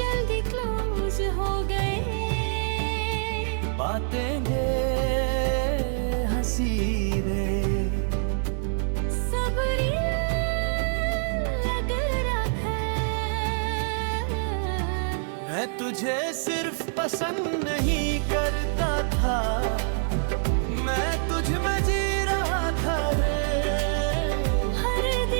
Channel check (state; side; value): silent; left; 61 dB below the other